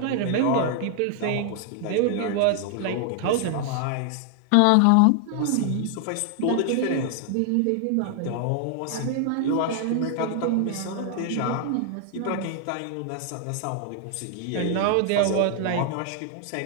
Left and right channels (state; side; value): different; both; correlation 0.00